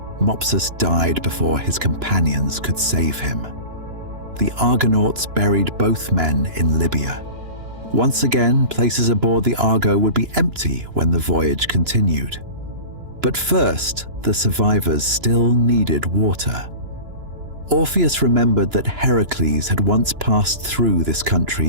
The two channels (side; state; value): left; late; 2.9 ms